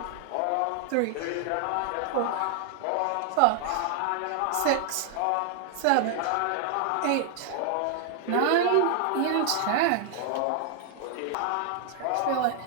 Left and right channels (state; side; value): different; both; correlation 0.00